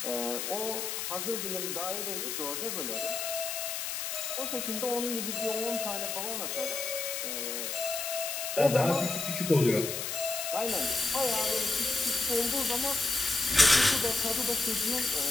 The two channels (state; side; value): noise; left; hiss, 3 dB below the sound